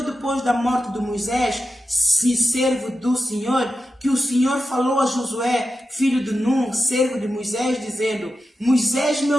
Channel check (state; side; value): normal; both; correlation 0.91